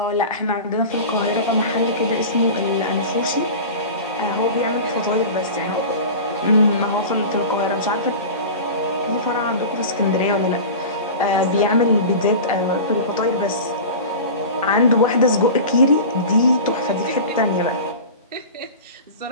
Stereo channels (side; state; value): both; inverted; correlation -0.32